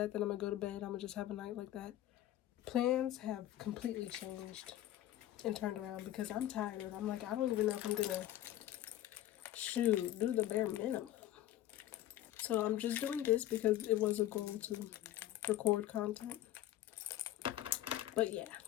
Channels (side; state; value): right; quieter; 13.4 dB